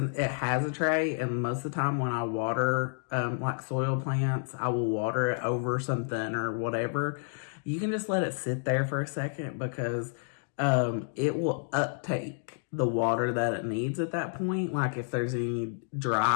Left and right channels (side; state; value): right; silent; digital silence